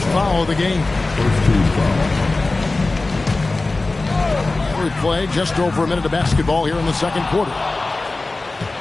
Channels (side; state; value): right; quieter; 3.3 dB